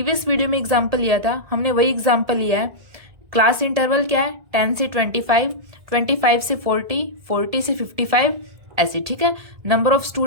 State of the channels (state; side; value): late; left; 1.7 ms